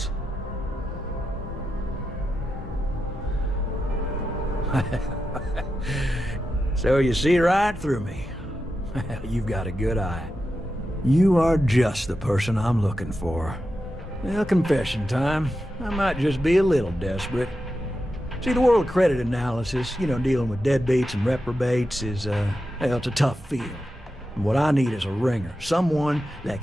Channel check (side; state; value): both; normal; correlation 0.89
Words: So you see right through me. You've got a good eye. You are just the person I'm looking for. Well, confession time. I might just be a little desperate. See, the world of credit analysis, dealing with deadbeats and reprobates is, it's a tough field. And what I need is a ringer, someone that